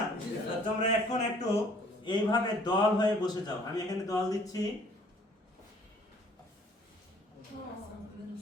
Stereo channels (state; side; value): normal; both; correlation 0.57